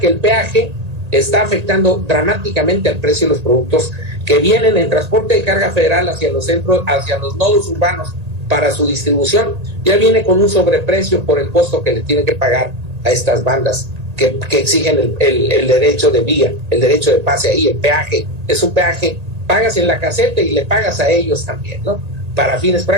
el peaje está afectando dramáticamente al precio de los productos que vienen en transporte de carga federal hacia los centros, hacia los nodos urbanos para su distribución. Ya viene con un sobreprecio por el costo que le tienen que pagar a estas bandas que exigen el derecho de vía, el derecho de pase ahí. El peaje es un peaje, pagas en la caseta y le pagas a ellos también, ¿no? Para fines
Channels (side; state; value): left; late; 1.8 ms